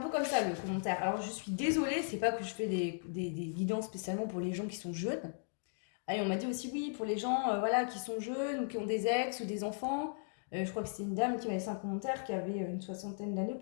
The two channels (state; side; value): silent; right; digital silence